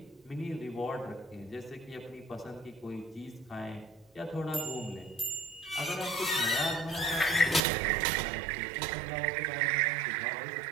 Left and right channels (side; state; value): left; drops out; at 7.6 s